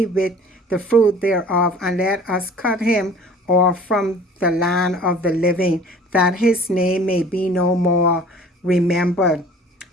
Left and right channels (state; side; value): normal; both; correlation 0.48